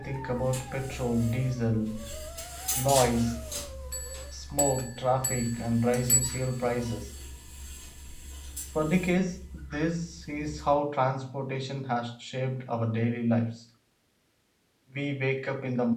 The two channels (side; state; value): both; identical; correlation 1.00